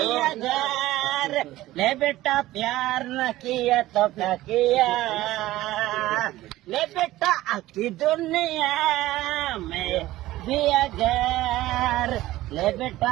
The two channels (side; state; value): left; quieter; 16.3 dB